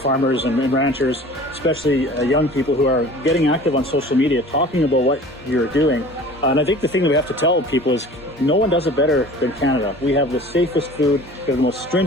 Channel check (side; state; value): both; normal; correlation 0.44